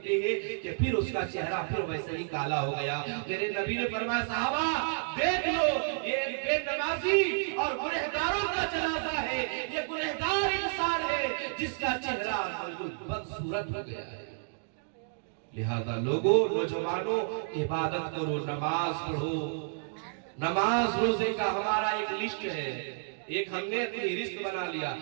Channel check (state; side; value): silent; left; digital silence